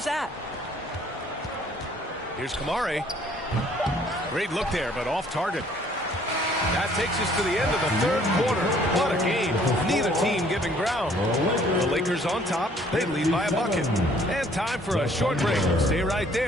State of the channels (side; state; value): both; normal; correlation 0.60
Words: that. Here's Kamari. Great look there, but off target. That takes us to the end of the third quarter. What a game. Neither team giving ground. The Lakers on top. They lead by a bucket. And time for a short break. Stay right